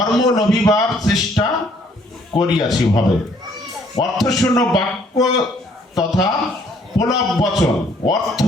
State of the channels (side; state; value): both; normal; correlation 0.63